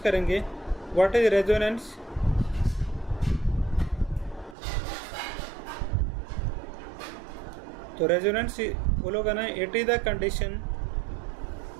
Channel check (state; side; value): drops out; left; at 4.5 s